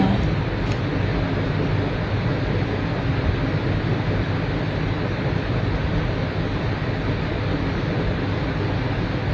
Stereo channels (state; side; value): identical; both; correlation 1.00